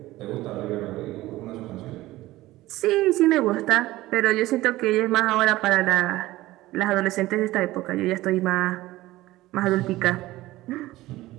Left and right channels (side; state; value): left; quieter; 17.3 dB